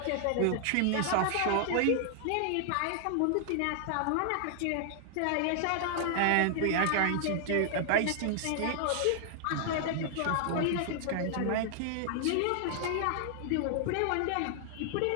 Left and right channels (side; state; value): both; different; correlation 0.00